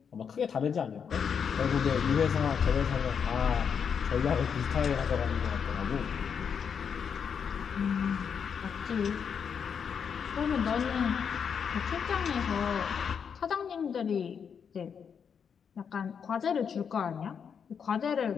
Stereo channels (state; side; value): quieter; right; 7.0 dB